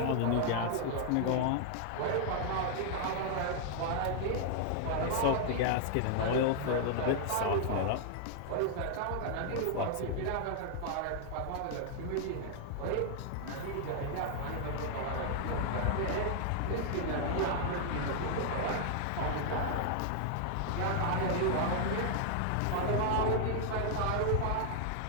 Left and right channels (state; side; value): different; both; correlation -0.01